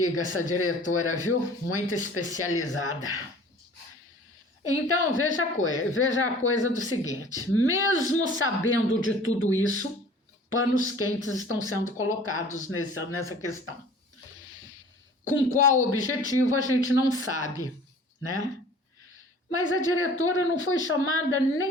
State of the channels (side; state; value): both; normal; correlation 0.47